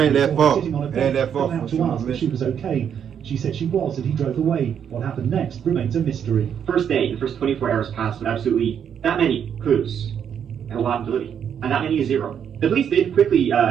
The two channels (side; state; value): left; quieter; 8.3 dB